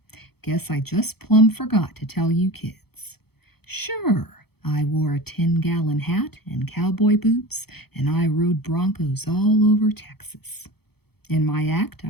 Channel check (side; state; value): right; late; 0.96 ms